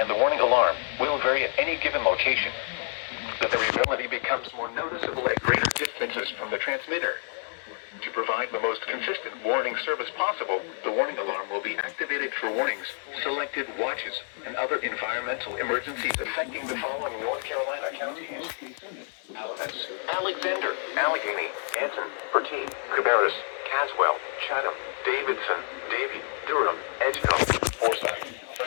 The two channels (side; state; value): right; silent; 56 dB below the other